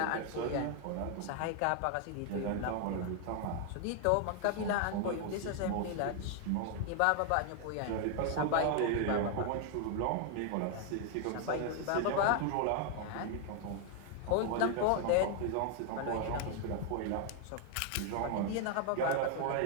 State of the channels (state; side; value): different; both; correlation 0.00